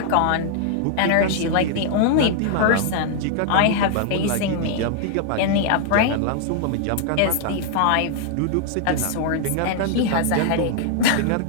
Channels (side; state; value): both; different; correlation -0.01